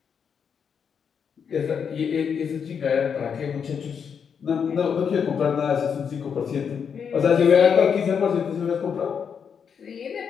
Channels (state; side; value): quieter; right; 7.0 dB